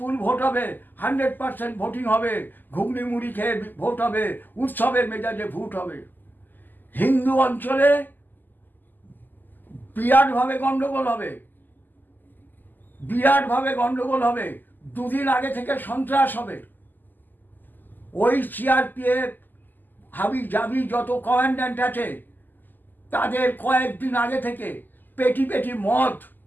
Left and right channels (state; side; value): late; right; 0.088 ms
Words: ভোট হবে, 100% ভোটিং হবে, ঘুগনি মুড়ি খেয়ে ভোট হবে, উৎসবের মেজাজে ভোট হবে। হিন্দু অঞ্চলে বিরাটভাবে গন্ডগোল হবে, দুদিন আগে থেকে সন্ত্রাস হবে। ওই সিআরপিএফ হাবি জাবি যত কমান্ড্যান্ট আছে, তাদের কয়েকদিন আগে থেকে পেটি মদ,